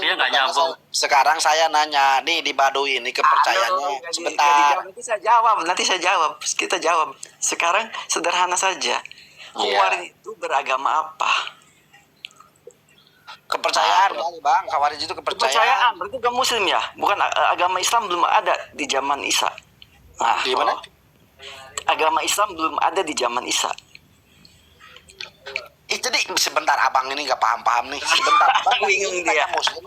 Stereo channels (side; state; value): both; identical; correlation 1.00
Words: nggak nyambung. Sekarang saya nanya nih di Baduy ini kepercayaannya. Sebentar. Nanti saya jawab. Kita jawab. Sekarang sederhana saja. Hawariyun itu beragama apa? Kepercayaan kali bang. Khawarij itu Kepercayaan. kepercayaan. Berarti bukan Muslim ya? Bukan agama Islam belum ada di zaman Isa. Nah, Gimana? agama Islam belum ada di zaman Isa. Jadi sebentar abang ini nggak paham nih. Sebentar. Abang Bingung tanya dia. Muslim